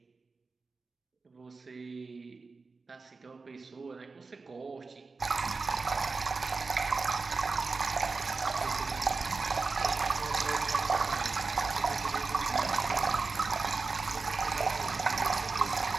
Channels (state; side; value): quieter; left; 4.2 dB